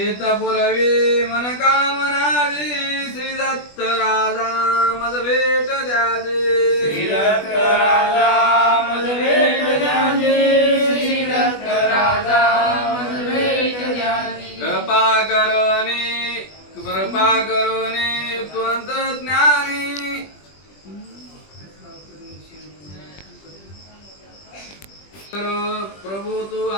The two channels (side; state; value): right; late; 20 ms